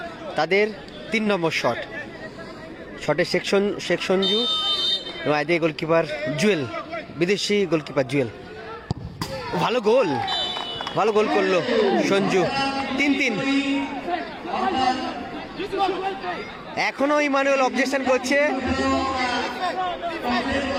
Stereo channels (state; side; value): identical; both; correlation 1.00